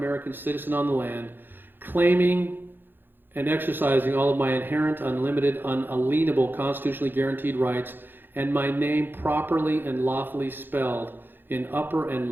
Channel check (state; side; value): late; left; 0.098 ms